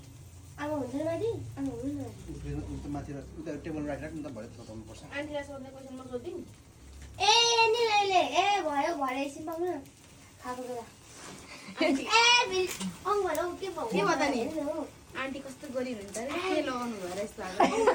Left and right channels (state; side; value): identical; both; correlation 1.00